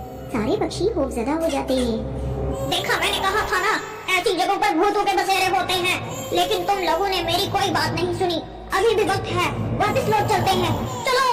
सारे पक्षी खौफजदा हो जाते हैं। देखा, मैंने कहा था ना, ऐसी जगहों पर भूतों के बसेरे होते हैं, लेकिन तुम लोगों ने मेरी कोई बात नहीं सुनी। अभी भी वक्त है, वापस लौट चलते हैं, चलो।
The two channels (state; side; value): identical; both; correlation 1.00